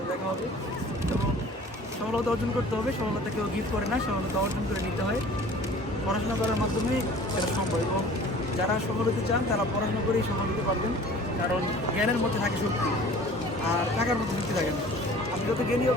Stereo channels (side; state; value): both; normal; correlation 0.47